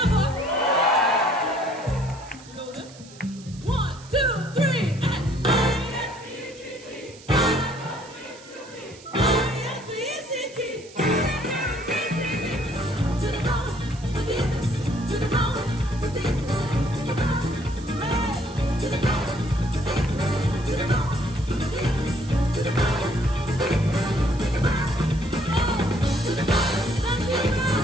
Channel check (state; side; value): noise; right; hiss, 21 dB below the sound